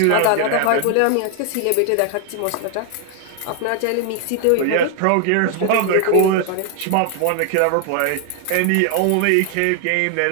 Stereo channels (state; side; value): different; both; correlation 0.00